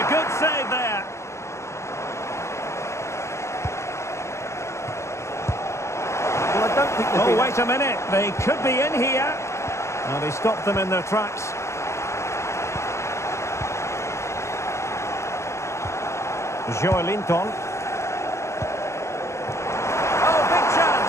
good save there. Well, I don't think Oh, wait a minute. They could be in here. Well, they stopped them in their tracks. Joelinton. Oh, big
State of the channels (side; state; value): right; late; 0.14 ms